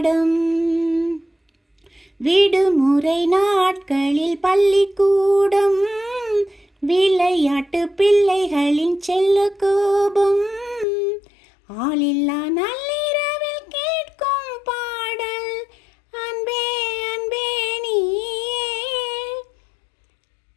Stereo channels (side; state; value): right; drops out; at 10.9 s